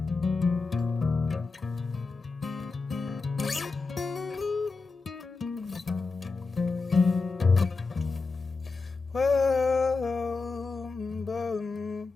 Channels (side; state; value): right; quieter; 4.1 dB